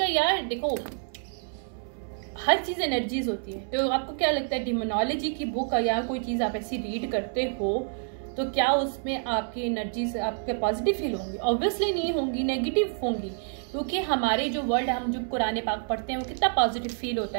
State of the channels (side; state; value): left; silent; 58 dB below the other